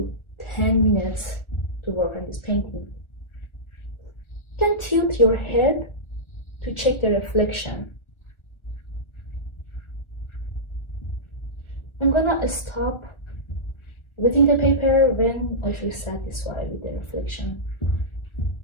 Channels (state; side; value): late; right; 1.4 ms